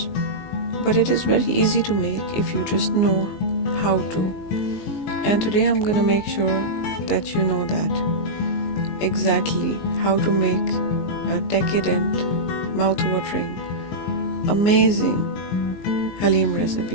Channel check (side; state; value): right; late; 19 ms